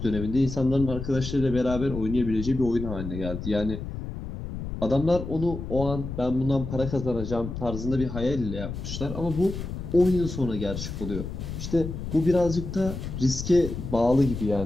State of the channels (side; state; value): left; noise; rumble, 7 dB below the sound